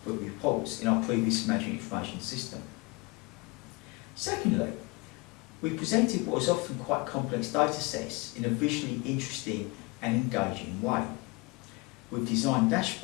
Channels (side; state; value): right; quieter; 26.1 dB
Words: reports in our previous management information system. Secondly, we presented what was often quite complex data sets in a visually interesting and engaging way. We've designed